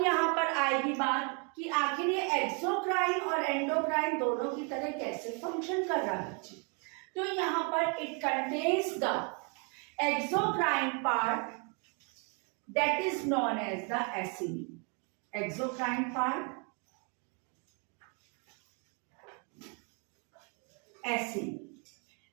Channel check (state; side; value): quieter; left; 36.4 dB